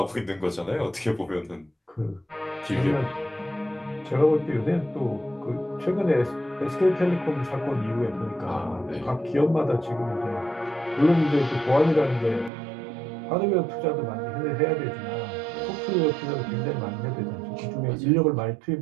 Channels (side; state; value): left; drops out; at 12.5 s